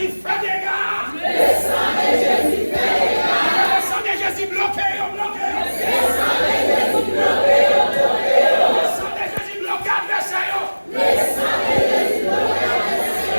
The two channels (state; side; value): inverted; both; correlation -1.00